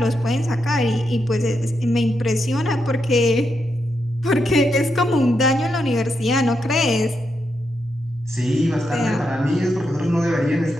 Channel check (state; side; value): normal; both; correlation 0.83